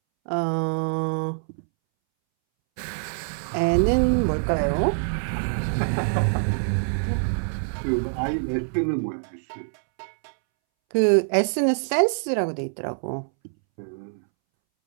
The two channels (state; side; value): silent; left; 62 dB below the other